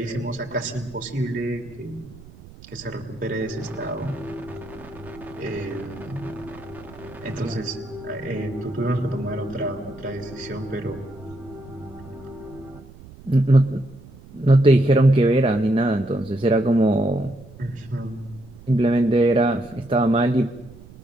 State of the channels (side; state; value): right; noise; rumble, 20 dB below the sound